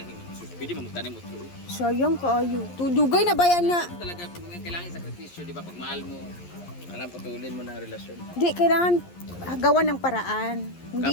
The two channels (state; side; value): late; right; 11 ms